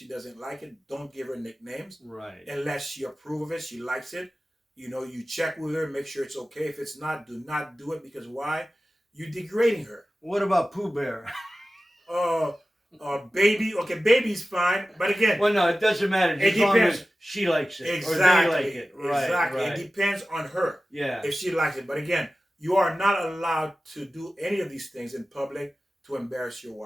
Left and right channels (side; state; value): both; normal; correlation 0.95